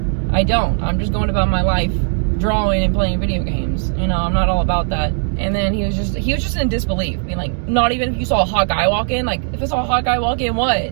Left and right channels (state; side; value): silent; left; 59 dB below the other